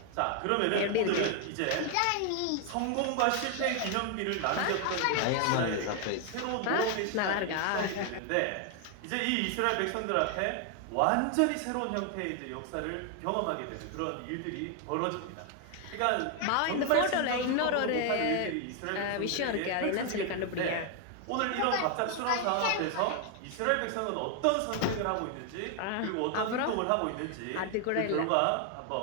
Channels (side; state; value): both; different; correlation 0.00